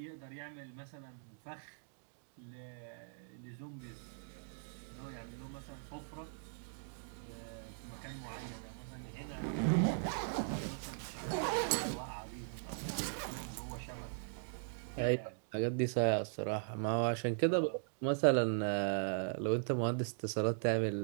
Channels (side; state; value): left; silent; digital silence